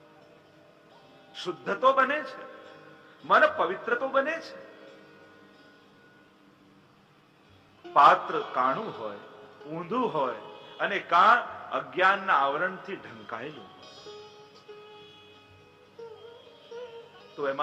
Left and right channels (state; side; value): identical; both; correlation 1.00